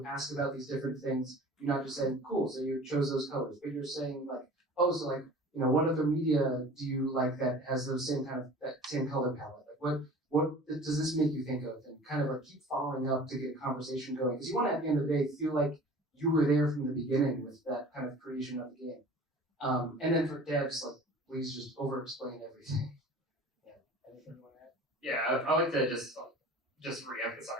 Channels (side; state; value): both; normal; correlation 0.42